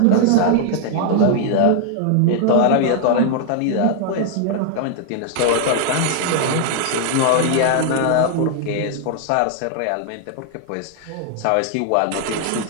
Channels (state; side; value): different; both; correlation 0.00